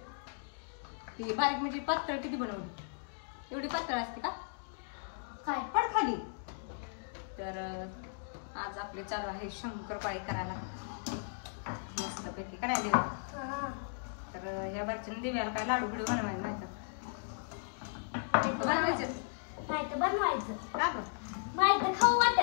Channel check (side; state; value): right; silent; digital silence